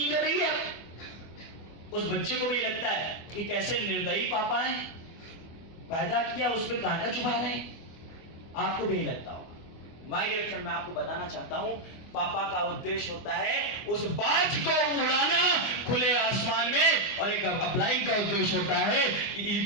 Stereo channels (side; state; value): right; late; 24 ms